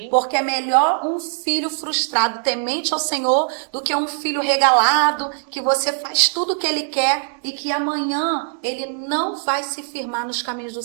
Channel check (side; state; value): left; silent; 65 dB below the other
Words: Porque é melhor um filho frustrado, temente ao Senhor, do que um filho regalado, que você faz tudo o que ele quer e que amanhã ele não vai se firmar nos caminhos do